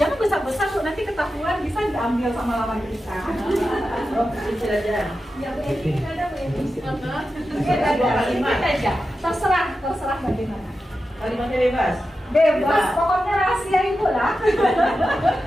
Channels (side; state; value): both; normal; correlation 0.91